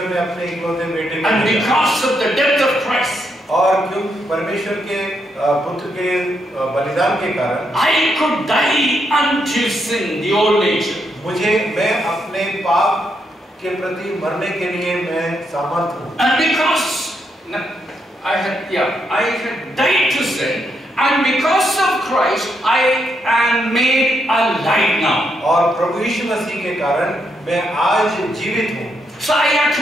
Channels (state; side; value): normal; both; correlation 0.79